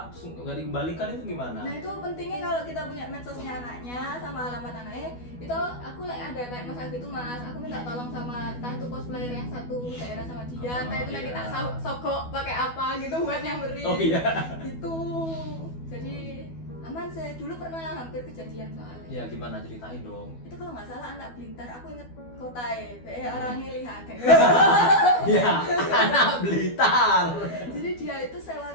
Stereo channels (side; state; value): right; late; 12 ms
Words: terus nggak dikembalikan itu gimana? Nah itu pentingnya kalau kita punya medsosnya anaknya sama alamat anaknya, itu aku ada kayak masalah gitu mas, aku minta tolong sama entah itu cosplayer yang satu daerah sama dia, entah itu nanti iya. tak sogok pakai apa gitu buat nyamperin. Oh iya. Gitu. Jadi aman sih, dulu pernah hampir kejadian soalnya. Ya gimana, ceritain dong. Itu kalau nggak salah anak Blitar, aku inget kota orangnya lihat kayak Ya, anak Blitar. jadi dia itu sewa